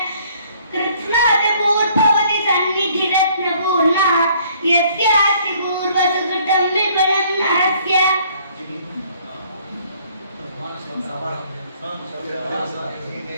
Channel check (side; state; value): both; inverted; correlation -0.61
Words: कृत्स्नातपूर्भवति सन्निधिरत्नपूर्णा यस्यास्ति पूर्वसुकृतं विपुलं नरस्य।